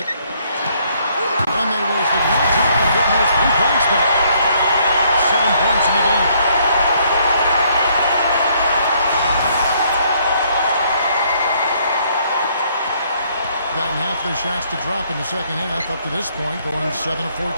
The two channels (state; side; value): inverted; both; correlation -0.67